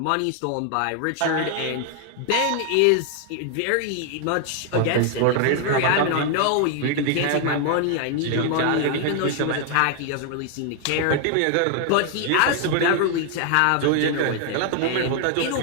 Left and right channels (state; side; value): different; both; correlation 0.00